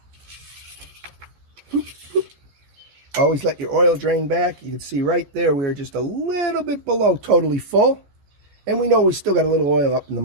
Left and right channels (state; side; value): late; left; 14 ms